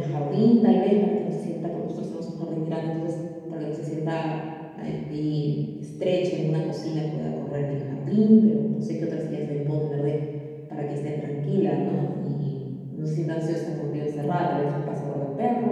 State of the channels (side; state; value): both; identical; correlation 1.00